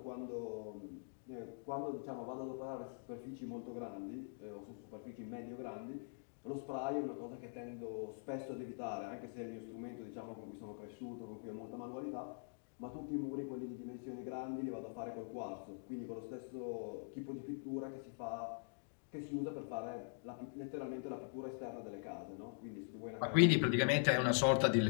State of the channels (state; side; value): silent; right; digital silence